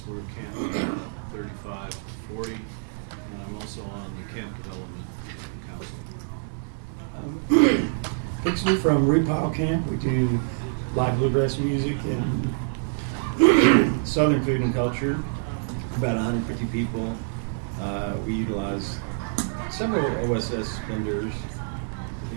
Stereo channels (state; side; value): silent; left; digital silence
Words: We're Camp 35 to 40, and I'm also on the Camp Development Council. Dixon from Root Pile Camp. We do live bluegrass music and southern food and culture. About 150 people. We utilize several OSS vendors. If